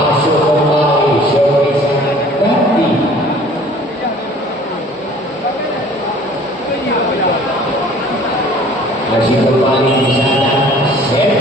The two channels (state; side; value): normal; both; correlation 0.51